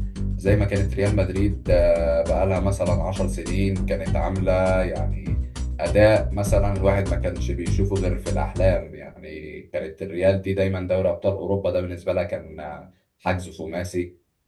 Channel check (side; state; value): both; identical; correlation 1.00